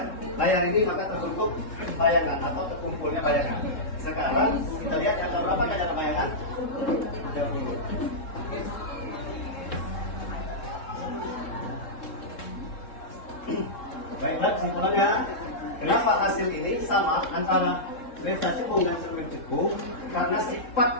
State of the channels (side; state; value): right; late; 3.7 ms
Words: layar ini maka terbentuk bayangan atau terkumpulnya bayangan. Sekarang kita lihat angka berapa ada bayangan? 30. Baiklah, kesimpulannya, kenapa hasil ini sama antara lensa cekung dan cermin cekung? Karena